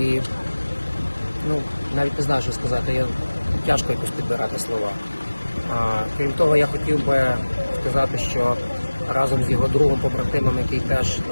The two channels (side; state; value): both; inverted; correlation -1.00